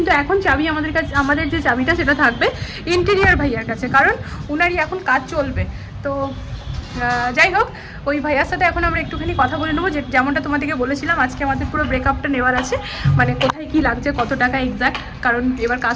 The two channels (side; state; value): both; identical; correlation 1.00